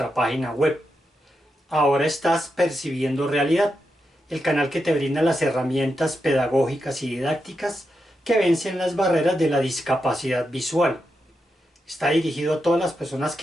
página web. Ahora estás percibiendo realidad, el canal que te brinda las herramientas pedagógicas y didácticas que vencen las barreras de la discapacidad visual. Está dirigido a todas las personas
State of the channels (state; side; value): normal; both; correlation 0.86